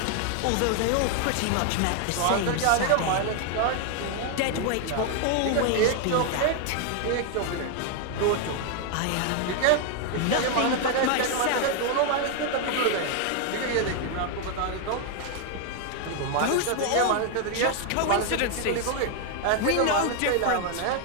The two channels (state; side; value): different; both; correlation 0.00